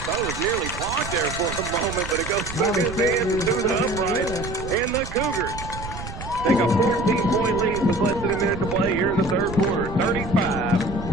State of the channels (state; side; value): noise; right; rumble, 10 dB below the sound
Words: it was nearly blocked there for a moment, but it goes through his hands and through the upright. And the Cougars take a 14-point lead with less than a minute to play here in the third quarter.